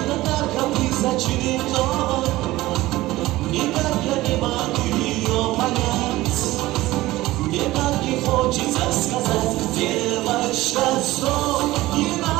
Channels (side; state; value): left; quieter; 17.7 dB